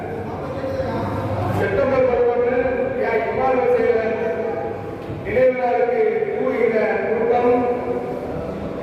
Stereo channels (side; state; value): both; identical; correlation 1.00